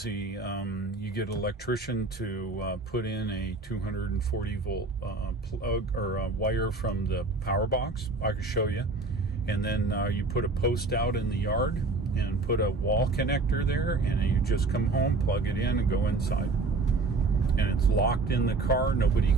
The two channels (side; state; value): left; quieter; 3.5 dB